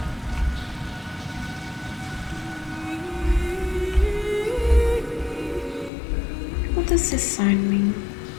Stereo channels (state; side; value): drops out; right; at 5.9 s